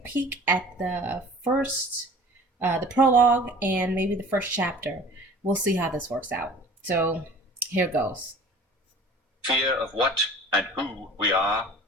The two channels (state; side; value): normal; both; correlation 0.45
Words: peek at the prologue, and maybe the first chapter. We'll see how this works out. So here goes. Fear of what and who we are